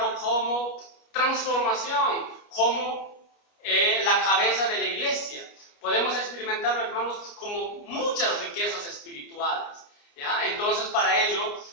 como transformación, como la cabeza de la iglesia. Podemos experimentarlo, hermanos, como muchas riquezas espirituales. ¿Ya? Entonces, para ello,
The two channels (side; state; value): right; late; 29 ms